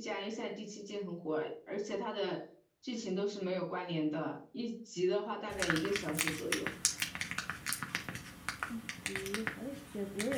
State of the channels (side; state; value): both; identical; correlation 1.00